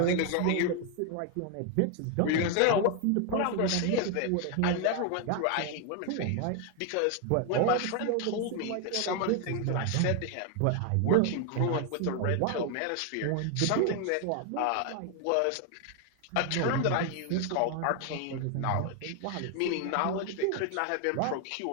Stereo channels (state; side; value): different; both; correlation 0.01